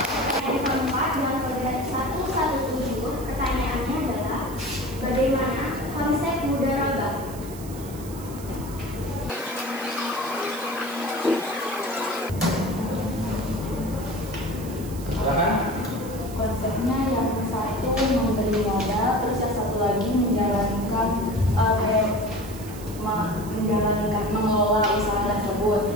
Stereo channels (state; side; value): noise; right; hiss, 16 dB below the sound